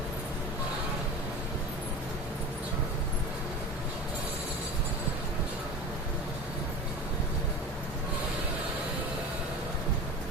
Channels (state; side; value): normal; both; correlation 0.32